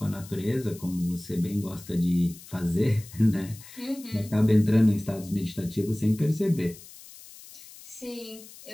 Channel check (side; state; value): left; noise; hiss, 18 dB below the sound